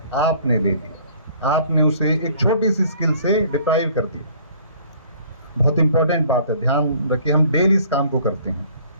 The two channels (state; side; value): inverted; both; correlation -0.55